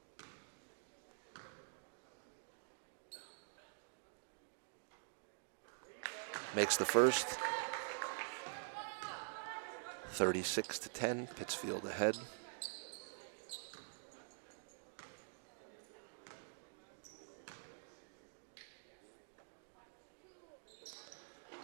Makes the first. 36-10, Pittsfield ahead.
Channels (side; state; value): left; silent; digital silence